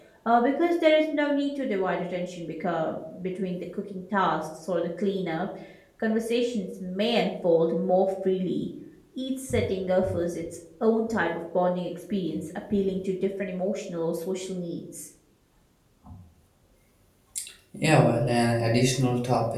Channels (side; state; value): both; identical; correlation 1.00